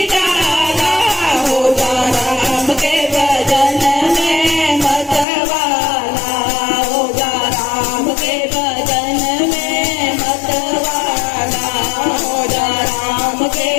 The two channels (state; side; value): drops out; right; at 5.2 s